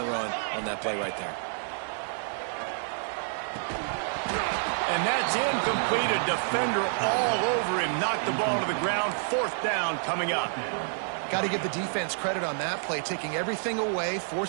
run on that play right there. And that's incomplete. A defender all over him. Knocked the ball to the ground. Fourth down coming up. Got to give the defense credit on that play, taking everything away,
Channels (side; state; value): left; silent; 59 dB below the other